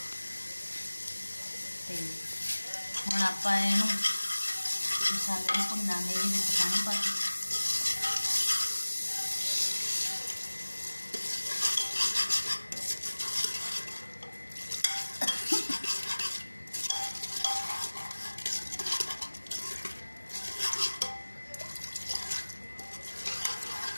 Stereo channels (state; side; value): inverted; both; correlation -1.00